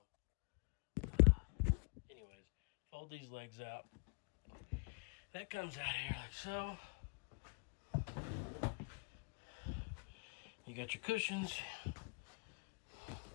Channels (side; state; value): right; quieter; 34.9 dB